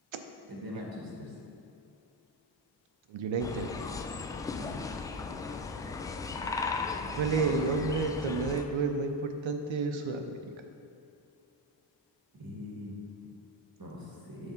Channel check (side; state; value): both; normal; correlation 0.13